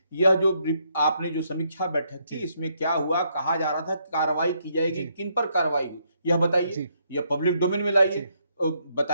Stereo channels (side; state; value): both; inverted; correlation -0.74